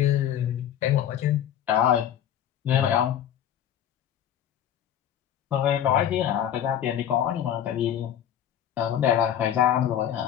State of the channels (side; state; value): right; quieter; 10.2 dB